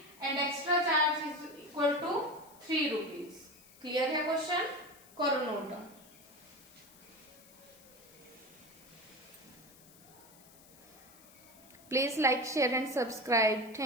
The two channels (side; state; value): left; noise; hiss, 23 dB below the sound